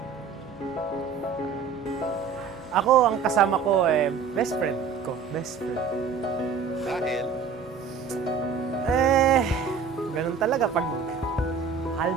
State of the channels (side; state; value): left; quieter; 5.8 dB